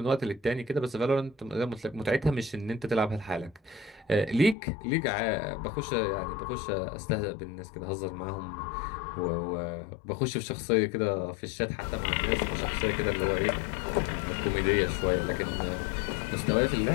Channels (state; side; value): drops out; right; at 4.5 s